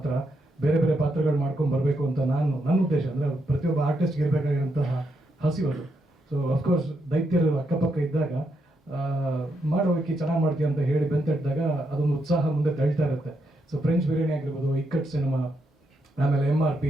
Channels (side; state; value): both; normal; correlation 0.80